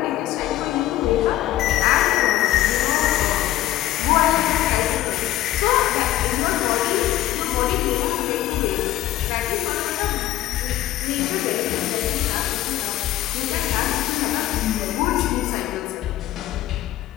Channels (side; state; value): right; quieter; 14.1 dB